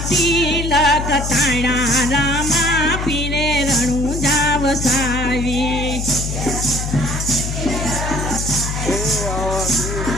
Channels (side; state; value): left; noise; hum, 4 dB below the sound